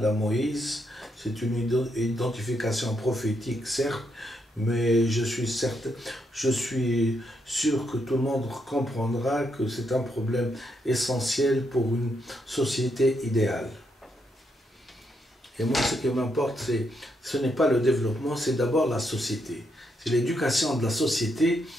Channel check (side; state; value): both; normal; correlation 0.79